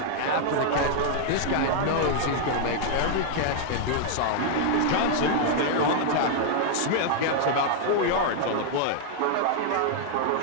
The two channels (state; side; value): different; both; correlation -0.01